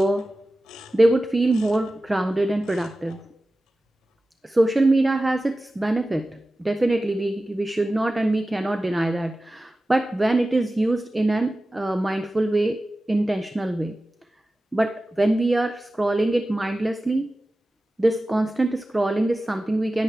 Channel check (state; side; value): normal; both; correlation 0.95